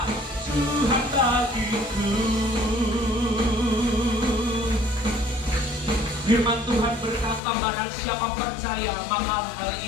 Tuhan bagiku. Firman Tuhan berkata, barang siapa percaya maka hal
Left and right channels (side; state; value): right; drops out; at 7.4 s